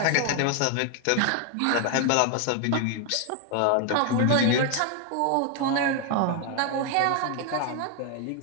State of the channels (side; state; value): both; different; correlation 0.01